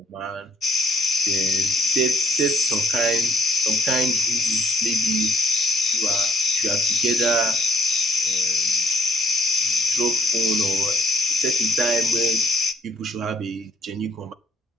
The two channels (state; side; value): normal; both; correlation 0.66